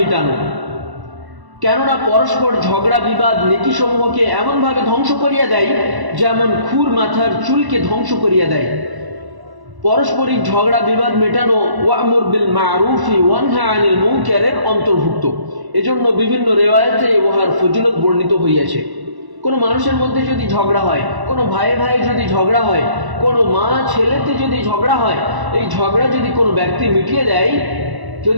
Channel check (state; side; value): late; left; 1.1 ms